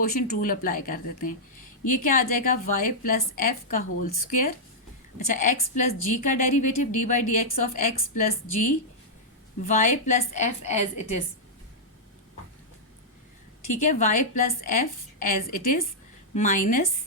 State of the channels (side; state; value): both; normal; correlation -0.08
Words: रूल अप्लाई कर देते हैं। ये क्या आ जाएगा, y प्लस एफ का होल स्क्वायर। अच्छा, x प्लस जी का derivative d by d x of x plus g y plus f as it is, ठीक है। y plus f as it is minus